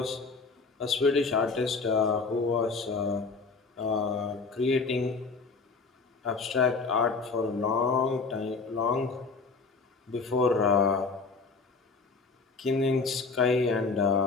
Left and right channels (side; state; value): right; quieter; 4.4 dB